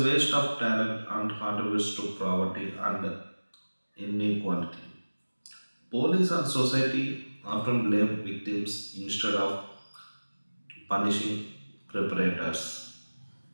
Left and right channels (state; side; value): inverted; both; correlation -1.00